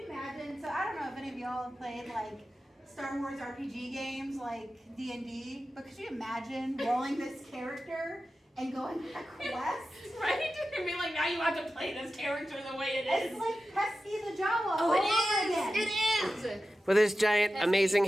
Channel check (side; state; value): both; normal; correlation 0.93